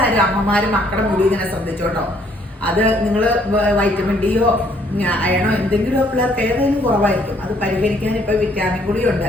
അമ്മമാരും മക്കളുടെ മുടി ഇങ്ങനെ ശ്രദ്ധിച്ചോട്ടോ. അത് നിങ്ങൾ വൈറ്റമിൻ ഡിയോ അയണോ എന്തെങ്കിലും പിള്ളേർക്ക് ഏതെങ്കിലും കുറവായിരിക്കും. അത് പരിഹരിക്കാൻ ഇപ്പോൾ വിറ്റാമിൻ ഗുളിയുണ്ട്.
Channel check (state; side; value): normal; both; correlation 0.65